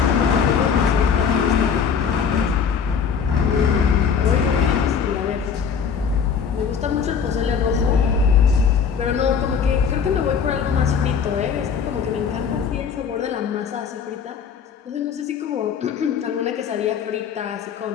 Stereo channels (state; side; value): quieter; right; 6.7 dB